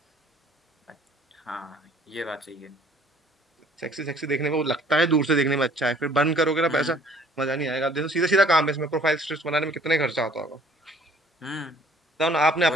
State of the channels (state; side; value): normal; both; correlation 0.56